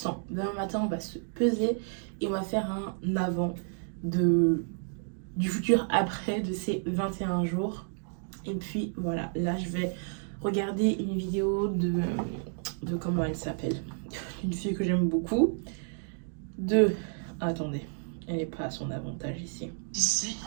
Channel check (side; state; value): left; silent; 57 dB below the other